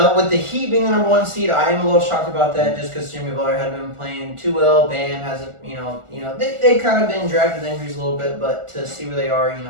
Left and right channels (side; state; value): left; late; 1.4 ms